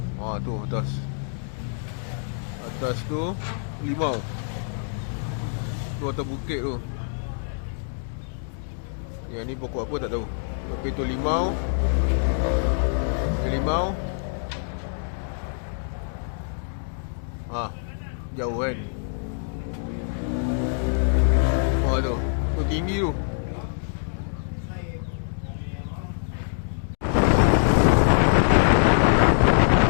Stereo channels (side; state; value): right; silent; digital silence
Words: Tu atas. Atas tu limau. Tu atas bukit tu. Yang ni pokok apa tak tahu. Tapi tu limau. Limau. Jauh kan. Tu. Tu tinggi tu.